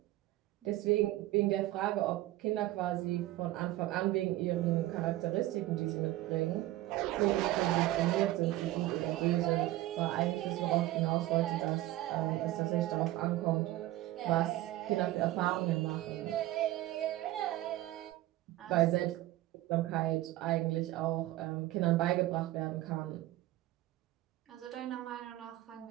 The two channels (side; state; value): left; quieter; 16.0 dB